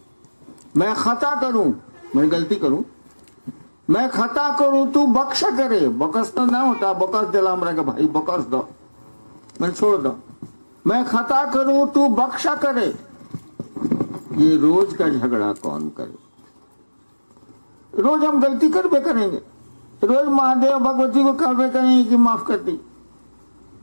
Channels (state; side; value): inverted; both; correlation -1.00